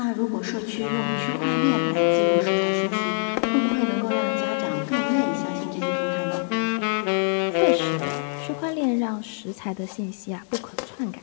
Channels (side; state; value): right; silent; digital silence